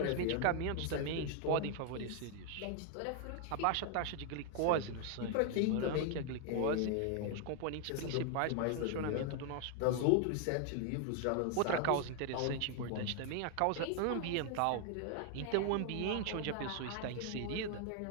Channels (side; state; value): both; different; correlation 0.00